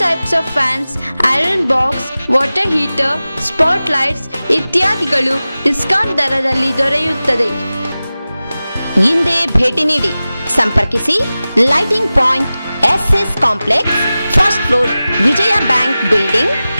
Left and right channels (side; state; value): both; inverted; correlation -0.96